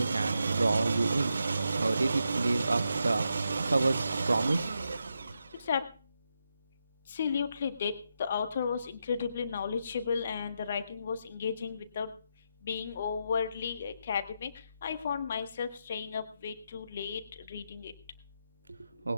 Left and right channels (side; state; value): both; inverted; correlation -0.84